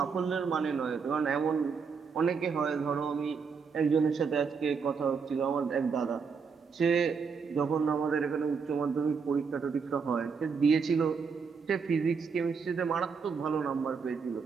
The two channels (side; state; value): left; quieter; 5.6 dB